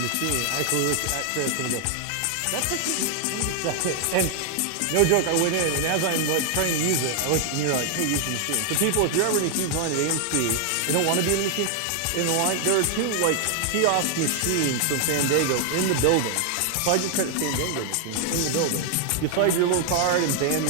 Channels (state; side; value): different; both; correlation 0.00